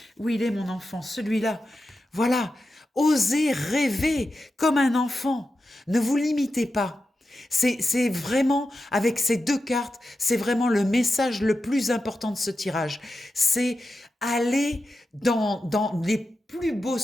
Où il est mon enfant? Celui-là. Voilà. Osez rêver comme un enfant. Ne vous limitez pas. C'est vraiment, avec ces deux cartes, c'est vraiment le message le plus important de ce tirage. C'est aller dans les plus beaux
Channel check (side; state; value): both; normal; correlation 0.90